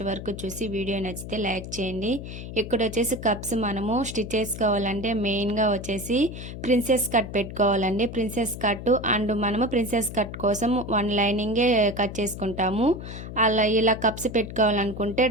వరకు చూసి వీడియో నచ్చితే లైక్ చేయండి. ఇక్కడ వచ్చేసి కప్స్ మనము స్టిచ్ చేసుకోవాలంటే మెయిన్గా వచ్చేసి ప్రిన్సెస్ కట్ పెట్టుకోవాలండి. ప్రిన్సెస్ కట్ అండ్ మనము ప్రిన్సెస్ కట్ కోసం వన్ లైనింగే కట్ చేసుకుంటాము. ఇలా కప్స్ పెట్టుకోవాలనుకుంటే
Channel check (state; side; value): noise; left; hum, 10 dB below the sound